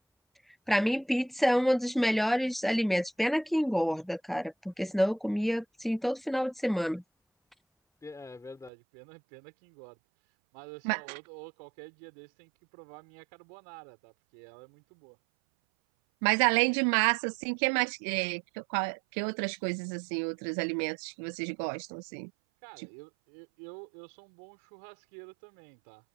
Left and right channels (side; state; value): left; drops out; at 8.7 s